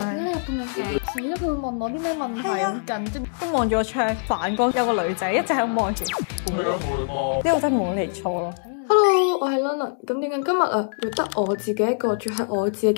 解你入咁靚嘅？死啦！佢會問我啲咩問題？好緊張，都望住個窗，反光有個女仔一直喺度望住。呢個真係冇嚟錯咯。Hello，我係 London。咁點解今日會得我自己一個住喺我自己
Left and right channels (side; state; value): right; silent; 63 dB below the other